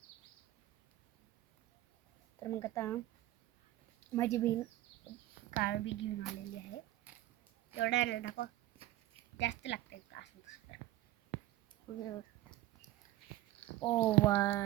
तर मग आता माझी बहीण काळं बी घेऊन आलेली आहे. एवढं आहे दाखव, जास्त लागतं का असं दुसरं. ओ वा,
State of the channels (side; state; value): left; quieter; 15.7 dB